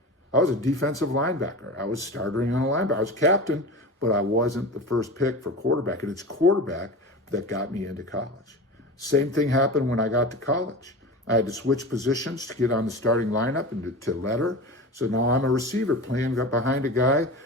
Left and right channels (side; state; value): both; normal; correlation 0.31